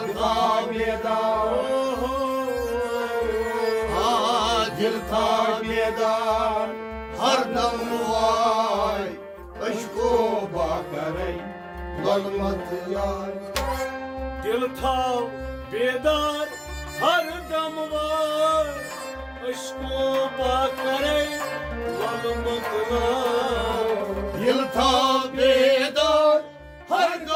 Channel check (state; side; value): identical; both; correlation 1.00